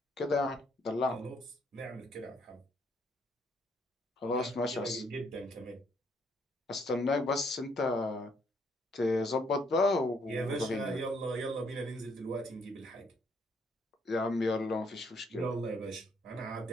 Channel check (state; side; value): normal; both; correlation 0.69